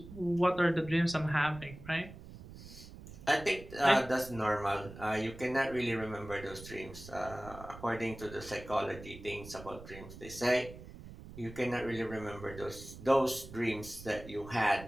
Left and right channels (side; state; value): right; noise; rumble, 15 dB below the sound